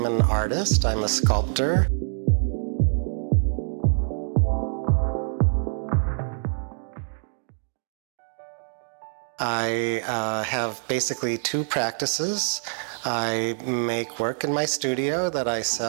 an artist. I'm a sculptor. I have basically two practices. I make work in my studio that I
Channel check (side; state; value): left; silent; 62 dB below the other